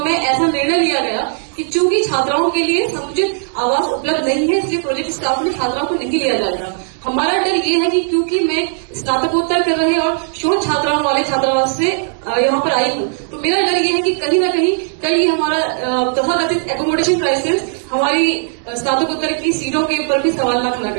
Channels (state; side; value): silent; left; digital silence